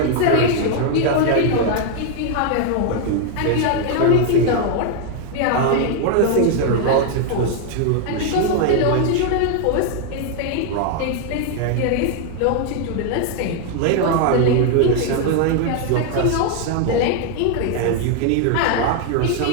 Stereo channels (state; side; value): different; both; correlation 0.00